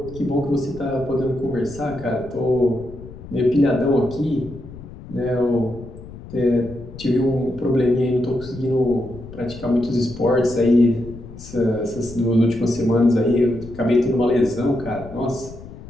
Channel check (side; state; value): left; noise; rumble, 15 dB below the sound